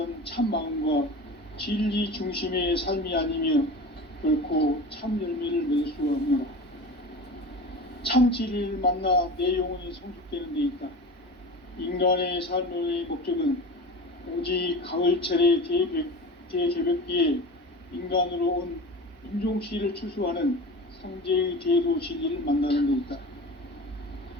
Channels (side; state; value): both; normal; correlation 0.33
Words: 참 마음과 진리 중심의 삶이 아니면 결코 참 열매를 맺을 수가 없노라. 참 진리를 만나 내 영혼이 성숙되는 데 있다. 인간의 삶의 목적은 오직 가을철의 대개벽기에 인간으로 온 인종씨를 추수하는 상제의 대도 진리를 만나는 데 있다.